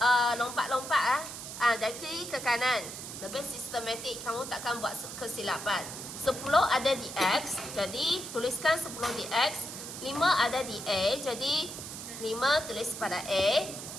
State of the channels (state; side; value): noise; right; hiss, 9 dB below the sound